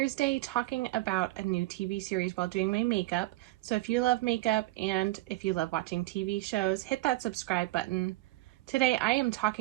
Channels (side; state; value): left; quieter; 19.1 dB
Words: talking about a new TV series while doing my makeup. So if you love makeup and if you love watching TV shows, hit that subscribe button. Today I am